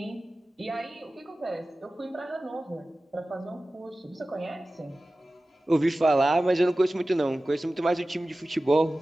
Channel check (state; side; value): normal; both; correlation 0.96